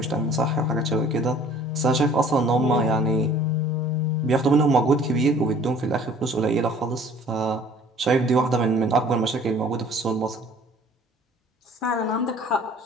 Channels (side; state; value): both; normal; correlation 0.52